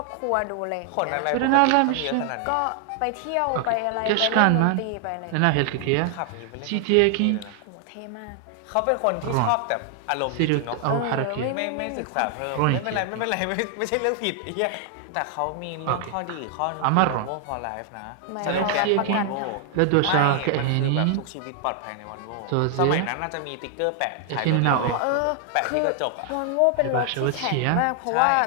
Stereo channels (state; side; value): different; both; correlation 0.00